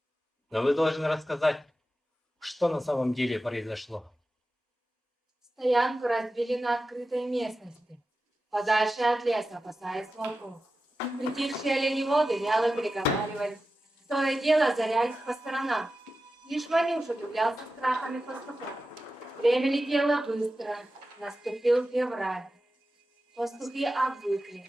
Но вы должны рассказать, что на самом деле произошло. Стоянку разбили на открытой местности, подальше от леса, опасаясь волков. Притихшие оленеводы вяло переговаривались, то и дело озарялись по сторонам. Лишь Ванюша удивлялся страхами пастухов. Время летело быстро, наступил февраль. Пастухи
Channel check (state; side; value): normal; both; correlation 0.93